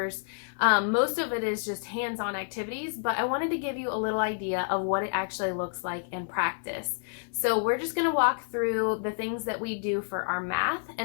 most of it is just hands-on activities, but I wanted to give you a little idea of what it actually looks like in practice. So we're just going to walk through the things that we do for our math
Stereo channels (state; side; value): silent; right; digital silence